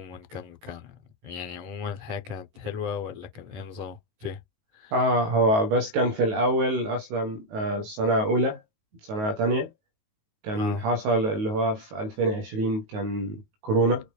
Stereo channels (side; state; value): left; late; 19 ms